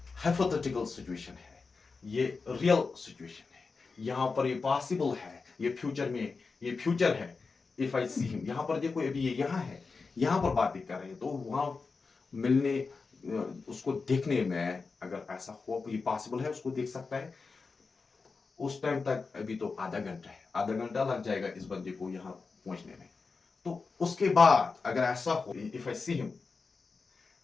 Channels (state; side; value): quieter; right; 4.5 dB